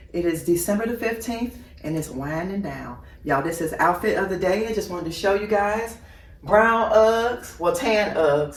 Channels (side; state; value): both; identical; correlation 1.00